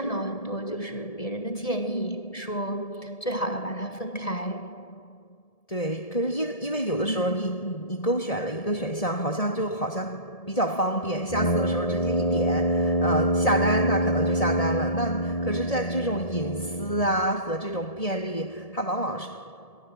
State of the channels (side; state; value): right; late; 1.7 ms